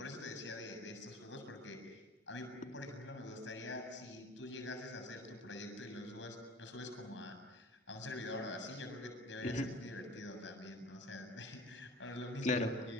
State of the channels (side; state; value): both; normal; correlation 0.43